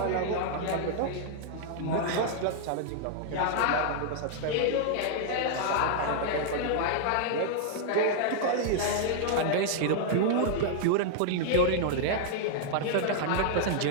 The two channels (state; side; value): different; both; correlation -0.01